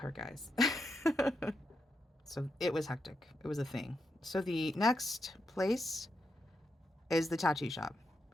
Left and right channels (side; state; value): both; normal; correlation 0.84